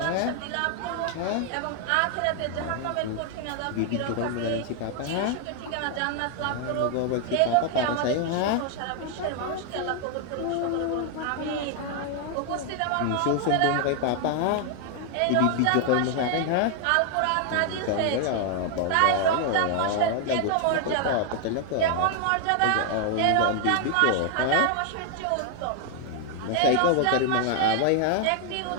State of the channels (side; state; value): both; different; correlation 0.00